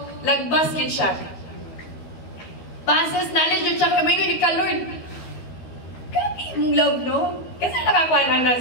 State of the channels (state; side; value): late; right; 12 ms